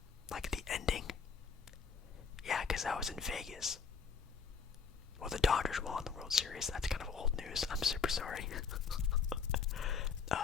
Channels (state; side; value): quieter; right; 5.7 dB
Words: Like the ending. Yeah, because that was in Vegas. Well, the Dodgers won the World Series. That's kind of old news. I'm super sorry.